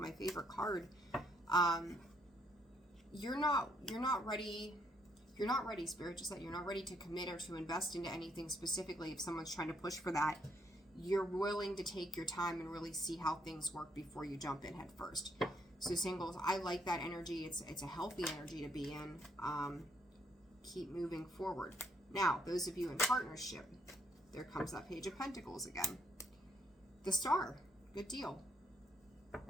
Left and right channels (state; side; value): normal; both; correlation 0.71